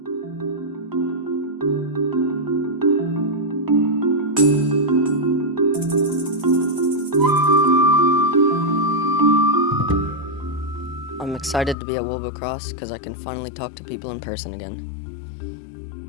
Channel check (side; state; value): right; drops out; at 11.8 s